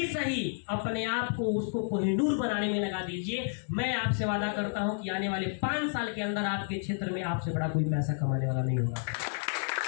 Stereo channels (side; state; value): right; silent; 57 dB below the other